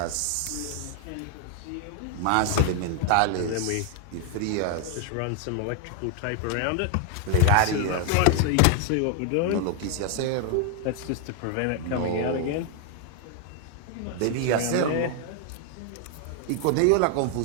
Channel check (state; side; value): different; both; correlation 0.00